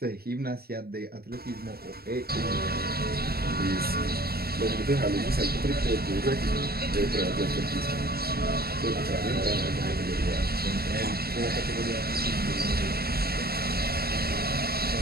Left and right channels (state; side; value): late; left; 0.45 ms